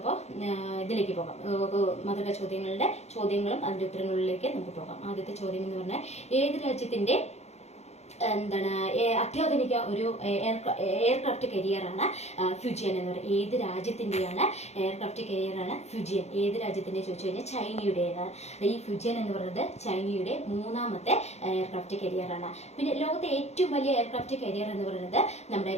ഇതിലേക്ക് പോകാം. മധുര ചോദ്യങ്ങളും അതിന്റെ ഉത്തരങ്ങളിലേക്ക് നമുക്ക് പോകാം. ആദ്യത്തെ ചോദ്യം എന്ന് പറഞ്ഞാൽ ഏത് രാജ്യത്തിന്റെ അത്യാധുനിക ഒരു എയർക്രാഫ്റ്റ് കരിയറാണ് ഫ്യൂജിയൻ എന്ന് പറയുന്നത്? ഏത് രാജ്യത്തിന്റെയാണ് എയർക്രാഫ്റ്റ് കരിയറാണ് ഫ്യൂജിയൻ? ഏത് രാജ്യത്തിന്റെ ചോദിച്ചു കഴിഞ്ഞാൽ ചൈനയുടേതാണ്. ഈ ഫ്യൂജിയൻ എന്ന് പറയുന്നത് ചൈനയുടെ മൂന്നാമത്തെ എയർക്രാഫ്റ്റ് കരിയറാണ്. പിന്നെ ലോകത്തെ ഏറ്റവും വലിയ എയർക്രാഫ്റ്റ് കരിയർ എന്ന് പറയുന്നത് നമ്മുടെ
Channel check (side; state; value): right; late; 0.32 ms